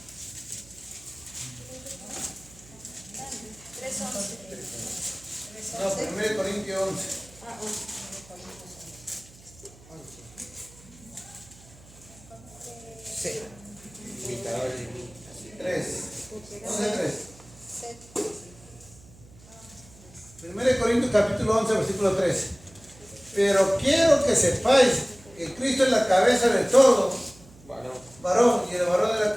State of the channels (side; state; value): right; noise; hum, 23 dB below the sound